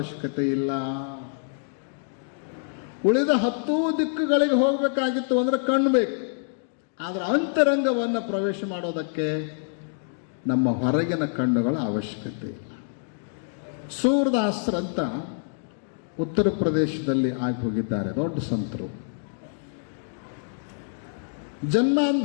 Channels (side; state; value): right; silent; digital silence